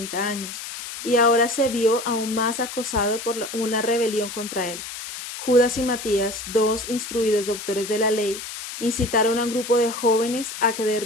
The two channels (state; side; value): noise; left; hiss, 9 dB below the sound